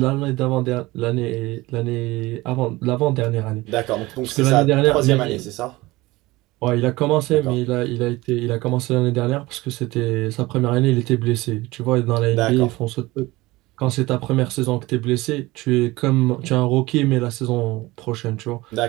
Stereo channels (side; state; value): left; quieter; 20.3 dB